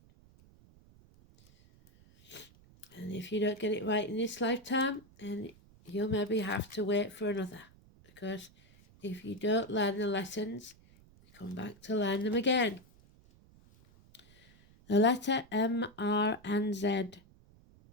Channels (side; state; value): right; noise; rumble, 26 dB below the sound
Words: And if you don't get it right in this lifetime, then you'll maybe have to wait for another. Because if you don't learn the lessons, you come back to learn them again. The letter M, R, and Z.